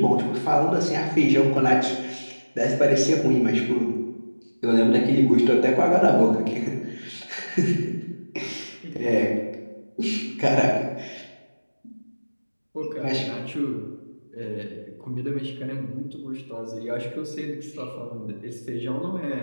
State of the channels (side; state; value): both; inverted; correlation -1.00